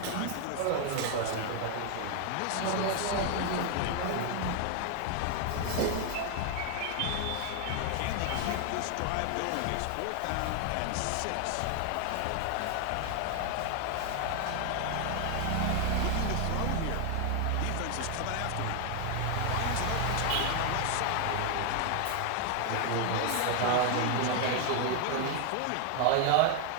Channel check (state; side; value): different; both; correlation 0.00